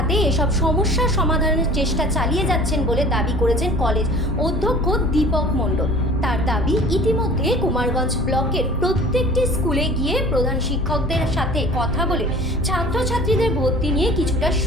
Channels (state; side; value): normal; both; correlation 0.44